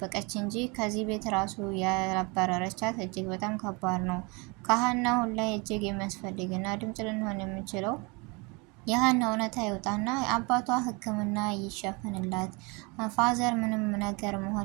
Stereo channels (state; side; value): quieter; left; 28.6 dB